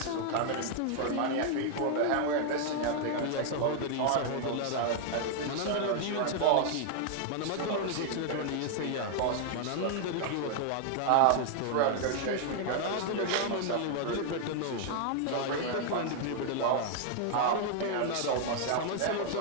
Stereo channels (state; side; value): different; both; correlation 0.00